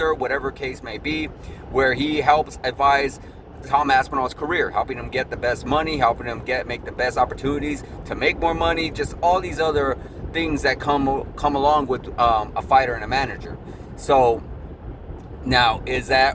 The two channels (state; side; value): identical; both; correlation 1.00